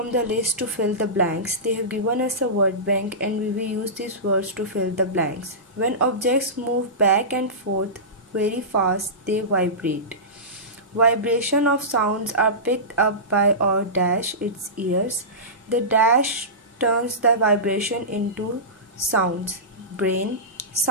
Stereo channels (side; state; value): both; normal; correlation -0.19